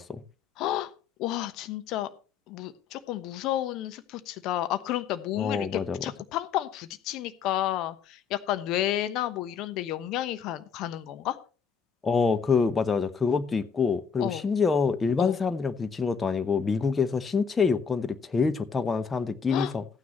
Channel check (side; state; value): right; quieter; 6.3 dB